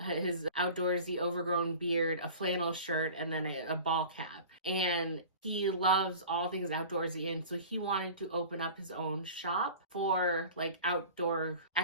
outdoorsy overgrown beard, a flannel shirt, and then a ball cap. And he loves all things outdoorsy, and so he wanted to open up his own shop for like outdoor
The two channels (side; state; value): both; inverted; correlation -0.39